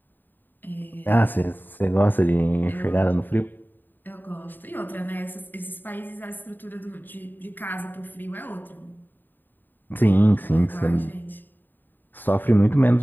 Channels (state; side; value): late; right; 0.091 ms